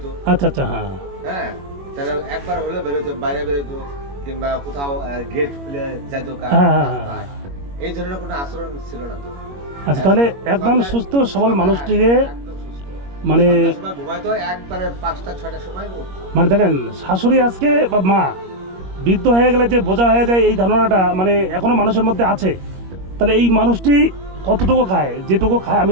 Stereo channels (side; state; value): left; late; 21 ms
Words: আচ্ছা আচ্ছা, হ্যাঁ হ্যাঁ, তাহলে একবার হলে বেরোতো, বাইরে বেরোতো, কিংবা কোথাও গেট খুলে যাইতো। হ্যাঁ, হ্যাঁ, হ্যাঁ। এই ধরনের কোনো আচরণ ছিল না তো। আচ্ছা, তাহলে একদম সুস্থ সবল মানুষটিরে একদম সুস্থ। মানে সন্ধ্যার সময় ঘুমাইতো, একবারে 5টা-6টার সময় উঠতো। মানে দেখেন, শাশুড়ি আজকে বা মা বৃদ্ধ হয়ে গেলে যে বোঝা হয়ে যায়, এই ধারণাটা মানে এখনো মানুষের মধ্যে আছে। তাহলে এই মানুষটি কতটুকু খায়, যেটুকু খায় আমি